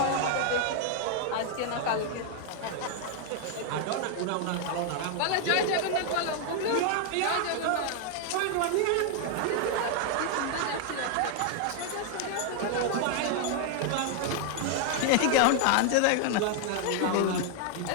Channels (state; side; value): different; both; correlation 0.00